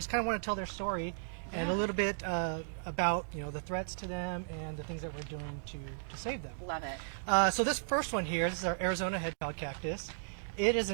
kind of want to tell their story Yeah. and a little bit about the threats to them and the things that we're doing to save them. Love it. So this first one here, this is our Arizona hedgehog cactus. It is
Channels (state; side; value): silent; left; digital silence